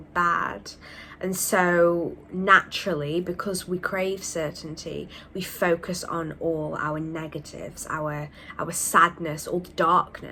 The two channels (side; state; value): both; identical; correlation 1.00